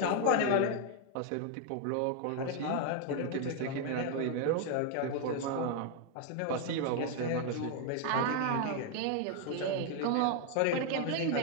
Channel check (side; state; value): both; different; correlation 0.00